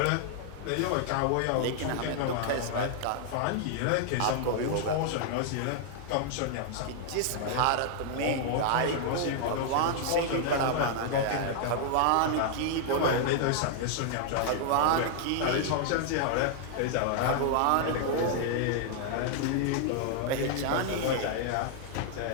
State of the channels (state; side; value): different; both; correlation 0.00